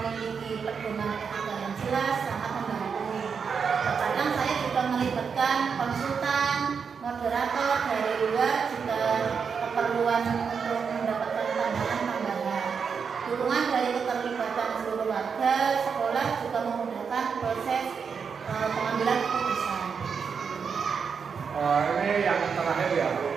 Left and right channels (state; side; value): quieter; left; 6.1 dB